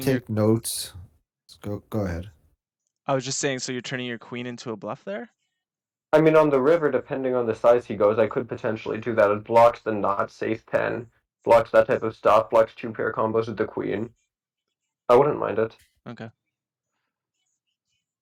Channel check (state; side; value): identical; both; correlation 1.00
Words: your. take notes. Go ahead. I was just saying. So you're turning your queen into a bluff there. I mean, on the river, depending on the size he goes, I could potentially do that. It blocks the not safe 10, blocks that type of stuff, blocks two pair combos with the queen. I wouldn't mind it. Okay.